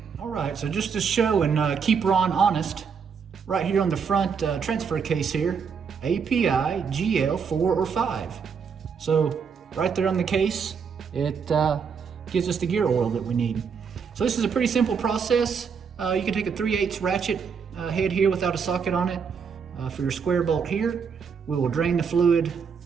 All right, so just to show and keep Ron honest, right here on the front transfer case here, API GL4 or 5. So right there on the case, it gives us the gear oil that we need. So this is a pretty simple process. You can take a 3/8 ratchet head here without a socket on it for your square bolt here. We will drain the fluid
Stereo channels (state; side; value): quieter; left; 6.3 dB